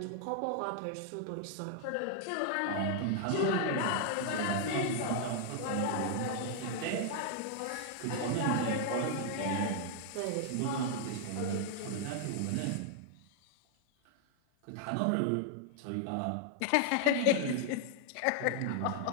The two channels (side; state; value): both; different; correlation 0.00